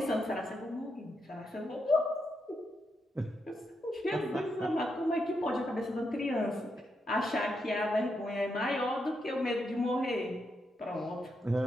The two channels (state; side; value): normal; both; correlation 0.82